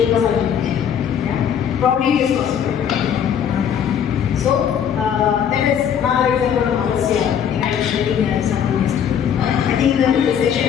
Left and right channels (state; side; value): quieter; right; 8.5 dB